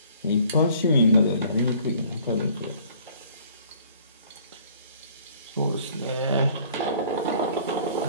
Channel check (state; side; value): inverted; both; correlation -0.56